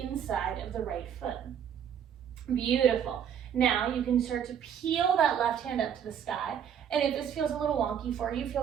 of the right foot. Beautiful. Now you can start to peel that left hand up to the sky. And if this feels a little wonky for you,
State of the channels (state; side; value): quieter; left; 8.5 dB